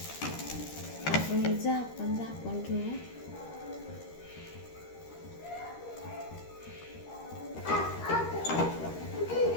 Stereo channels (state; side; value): late; right; 13 ms